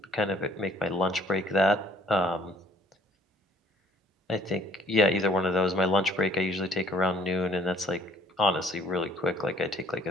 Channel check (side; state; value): both; normal; correlation 0.59